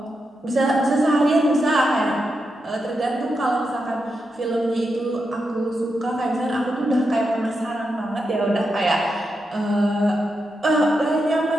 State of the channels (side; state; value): both; normal; correlation 0.86